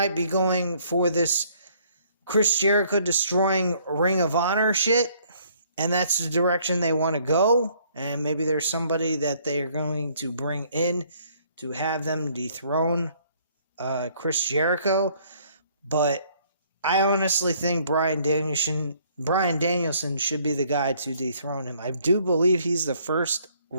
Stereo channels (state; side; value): inverted; both; correlation -0.63